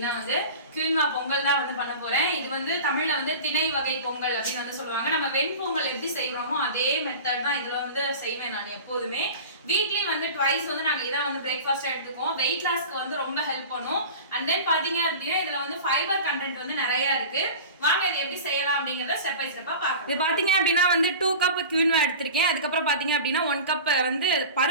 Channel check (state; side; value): inverted; both; correlation -0.36